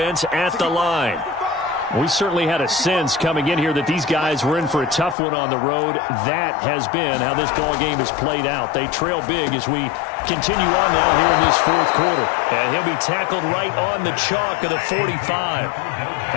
at the line. We certainly had a sense coming in here that these guys were in for a tough one on the road. That has been how this ball game has played out. They trail big as we continue on now here in this fourth quarter. And he'll be tackled right on the chalk of the 45.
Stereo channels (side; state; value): right; drops out; at 5.2 s